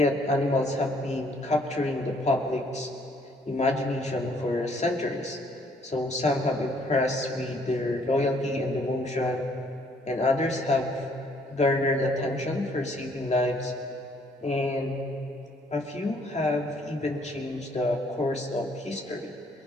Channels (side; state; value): both; normal; correlation 0.64